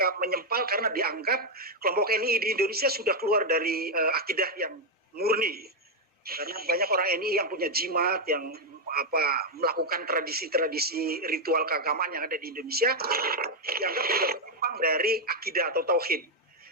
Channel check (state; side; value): normal; both; correlation 0.02